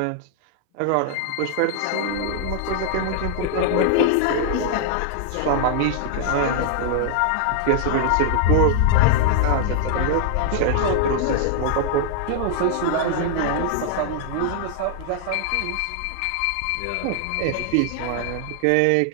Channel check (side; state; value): both; different; correlation 0.00